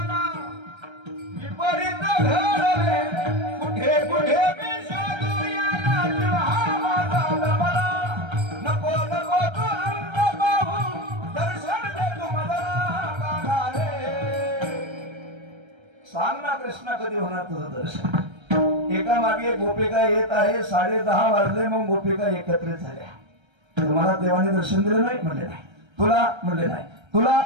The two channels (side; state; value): left; late; 1.3 ms